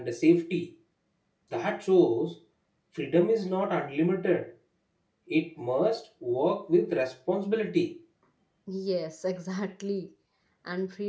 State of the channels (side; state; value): both; identical; correlation 1.00